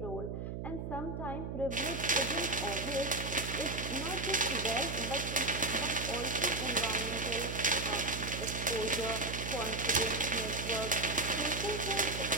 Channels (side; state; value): right; noise; hum, 5 dB below the sound